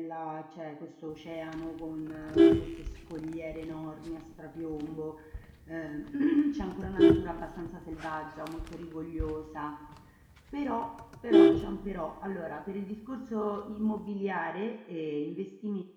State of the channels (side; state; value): both; identical; correlation 1.00